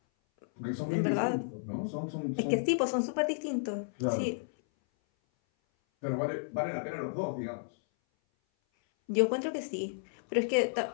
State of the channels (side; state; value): right; silent; 56 dB below the other